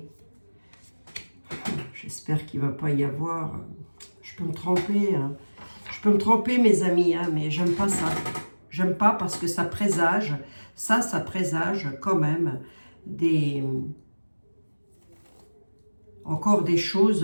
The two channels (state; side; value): inverted; both; correlation -1.00